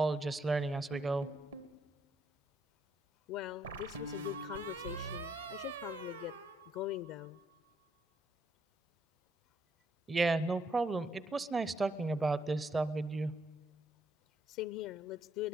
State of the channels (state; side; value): normal; both; correlation 0.73